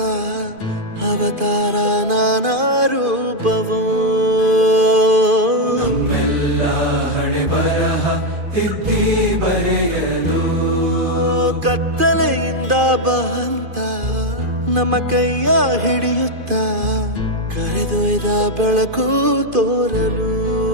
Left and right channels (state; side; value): late; left; 2.5 ms